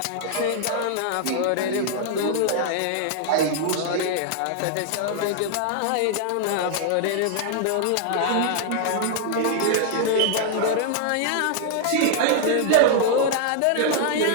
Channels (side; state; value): both; different; correlation 0.00